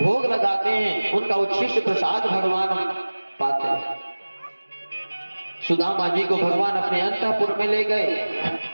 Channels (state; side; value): inverted; both; correlation -1.00